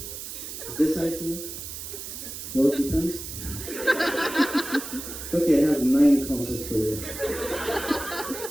Is this ICU? Well, it depends. Okay, I have 9 consults for you.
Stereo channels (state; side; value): noise; right; hiss, 9 dB below the sound